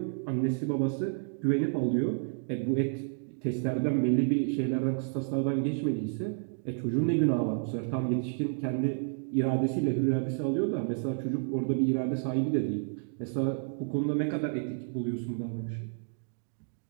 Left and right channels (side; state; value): left; silent; digital silence